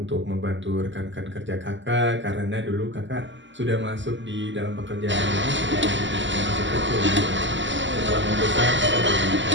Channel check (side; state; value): left; late; 0.54 ms